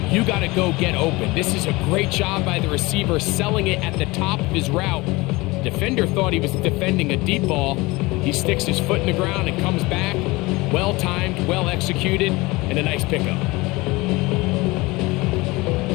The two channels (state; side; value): quieter; right; 22.5 dB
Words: You got to go get open. This is a great job by the receiver selling it at the top of his route. Defender thought he was defending a deep ball. He sticks his foot in the ground and comes back. Well-timed, well-executed, and a nice pickup.